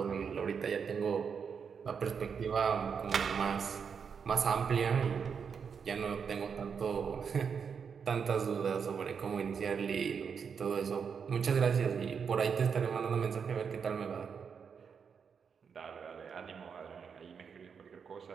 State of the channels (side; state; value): left; quieter; 6.5 dB